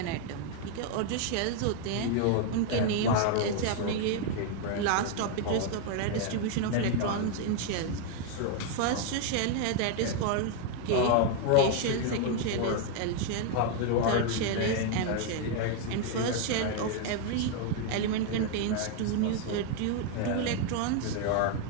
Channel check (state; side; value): different; both; correlation 0.01